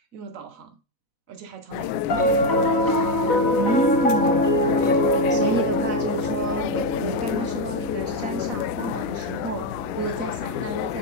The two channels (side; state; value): right; late; 4.0 ms